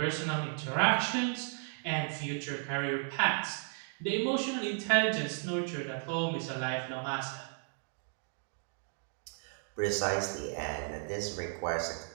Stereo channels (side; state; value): left; silent; 55 dB below the other